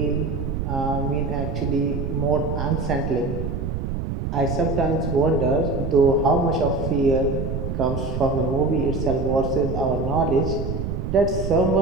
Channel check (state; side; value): noise; right; rumble, 3 dB below the sound